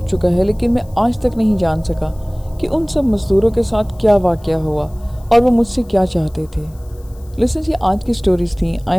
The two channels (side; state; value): left; noise; hiss, 29 dB below the sound